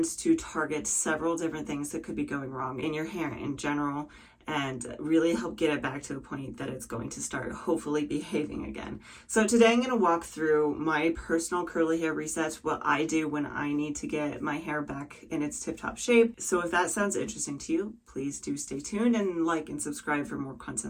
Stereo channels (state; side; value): identical; both; correlation 1.00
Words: to target several different things that could be going wrong in your hair in general, and really help get it back to a point that it's going to start hopefully behaving again. So today I'm going to walk through my personal curly hair resets, what I do when I need to get my hair back in its tip-top shape. So if that sounds interesting to you, please do stay tuned and like and subscribe for more